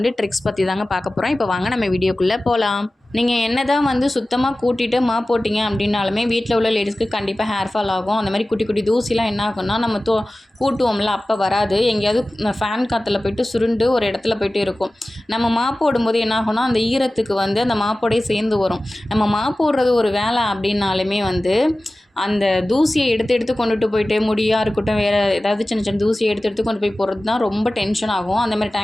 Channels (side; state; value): both; normal; correlation 0.96